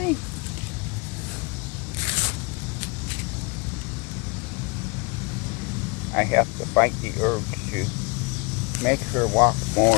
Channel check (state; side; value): quieter; right; 29.0 dB